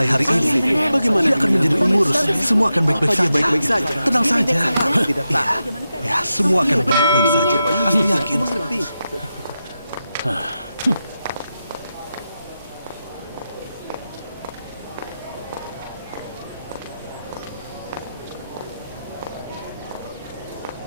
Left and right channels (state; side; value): inverted; both; correlation -0.89